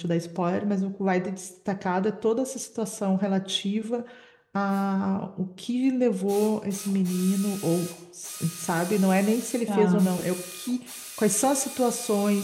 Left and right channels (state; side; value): identical; both; correlation 1.00